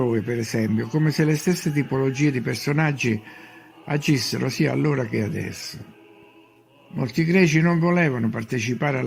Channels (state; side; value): identical; both; correlation 1.00